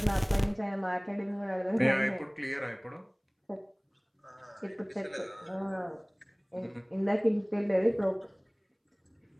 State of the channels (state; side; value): identical; both; correlation 1.00